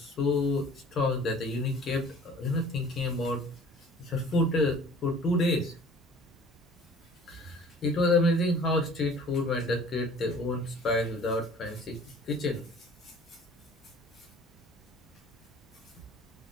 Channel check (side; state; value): both; normal; correlation 0.49